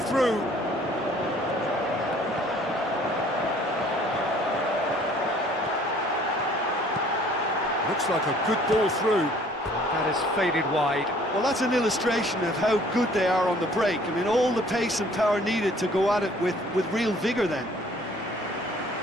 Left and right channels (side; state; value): both; normal; correlation 0.56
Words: Looks like a good ball through. That has faded wide. Well, that's an illustration of how good they are on the break. I mean, all the pace and power needed to go at it with real vigour then.